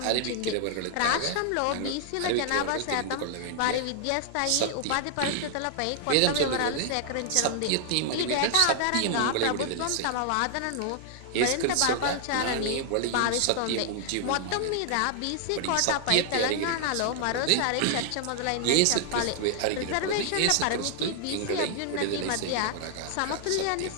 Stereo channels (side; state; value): both; different; correlation -0.01